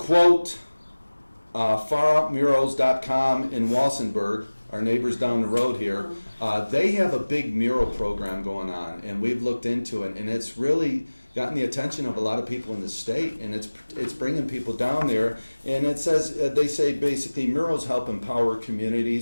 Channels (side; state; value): both; inverted; correlation -1.00